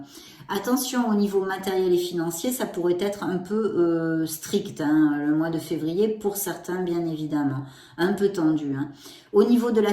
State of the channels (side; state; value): both; identical; correlation 1.00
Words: Attention au niveau matériel et financier, ça pourrait être un peu strict, hein, le mois de février, pour certains bien évidemment, un peu tendu, hein. Au niveau de la